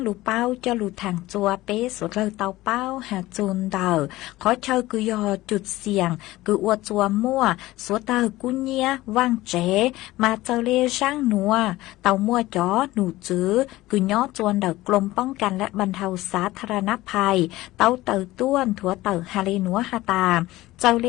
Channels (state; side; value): quieter; right; 17.6 dB